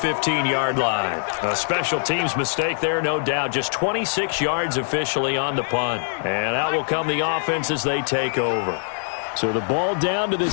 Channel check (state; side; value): silent; right; 64 dB below the other